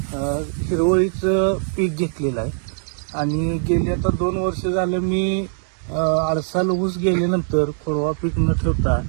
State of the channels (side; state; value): left; silent; digital silence